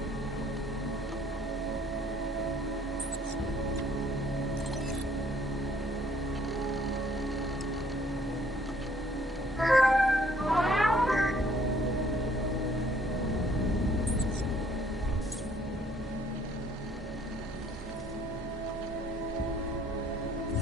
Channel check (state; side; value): normal; both; correlation 0.62